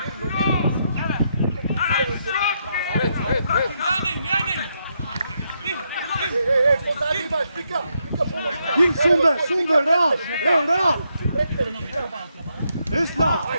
Ej, pozadnji imaš, Vika, pomoć. Sunde, Real. Islam.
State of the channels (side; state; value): both; inverted; correlation -0.79